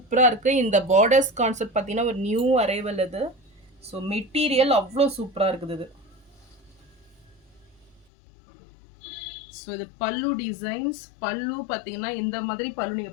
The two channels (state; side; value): drops out; right; at 8.1 s